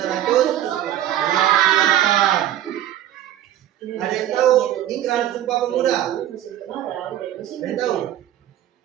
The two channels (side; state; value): left; quieter; 12.2 dB